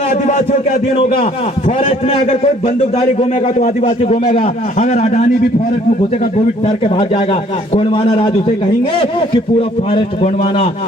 के अधीन होगा। फॉरेस्ट में अगर कोई बंदूकधारी घूमेगा तो आदिवासी घूमेगा, अगर अडानी भी फॉरेस्ट में घुसेगा तो भी डर के भाग जाएगा। गोंडवाना राज उसे कहेंगे कि पूरा फॉरेस्ट गोंडवाना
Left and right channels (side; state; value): both; normal; correlation 0.60